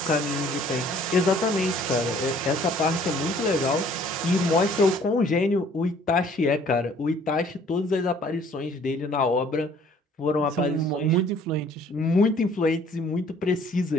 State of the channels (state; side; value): normal; both; correlation 0.57